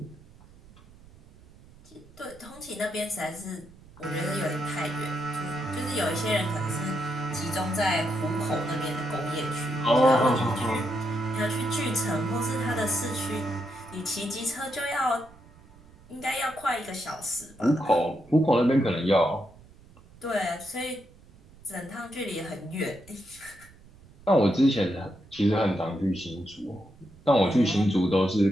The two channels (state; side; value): noise; right; rumble, 24 dB below the sound